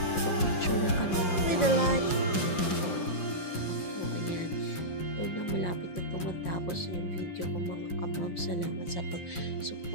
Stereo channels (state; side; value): late; right; 5.6 ms